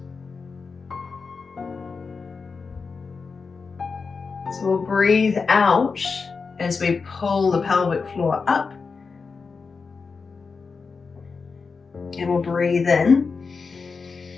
So we'll breathe out as we pull the pelvic floor up. And we'll breathe in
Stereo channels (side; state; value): right; quieter; 4.8 dB